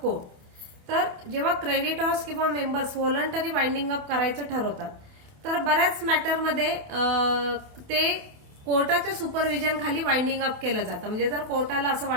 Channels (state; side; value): late; left; 28 ms